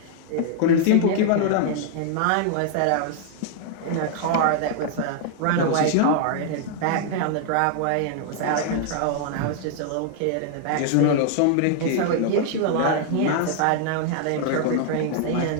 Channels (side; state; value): both; different; correlation 0.00